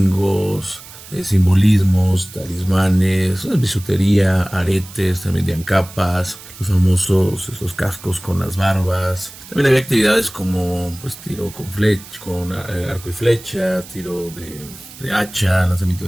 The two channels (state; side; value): noise; right; hiss, 17 dB below the sound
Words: simbolismos, talismanes, bisutería, aretes, también vendían capas, los famosos estos cascos con las barbas. También había actividades como tiro con arco y flecha, tiro de hacha, lanzamiento